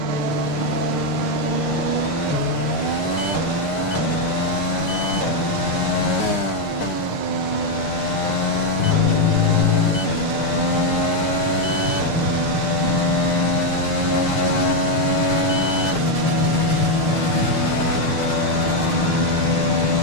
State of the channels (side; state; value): right; late; 6.6 ms